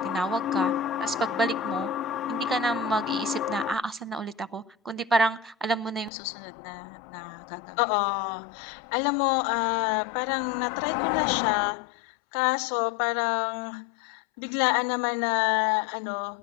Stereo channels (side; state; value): right; drops out; at 6.1 s